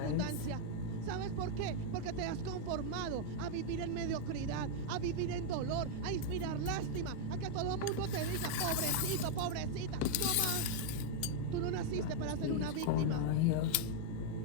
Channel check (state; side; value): different; both; correlation 0.00